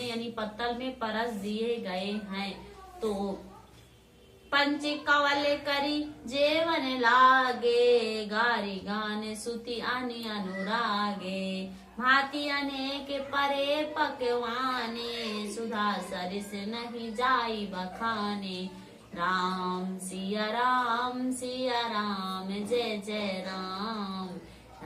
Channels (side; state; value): both; identical; correlation 1.00